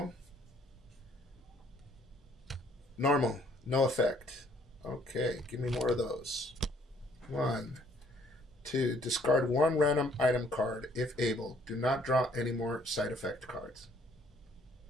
normal, no effect. Okay, give me more of those. 1, 2. Discard one random item card if able. Do not draw any more side effect cards.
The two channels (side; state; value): both; normal; correlation 0.63